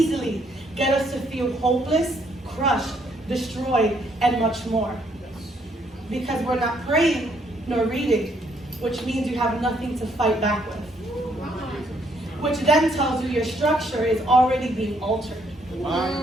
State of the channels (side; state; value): both; normal; correlation 0.70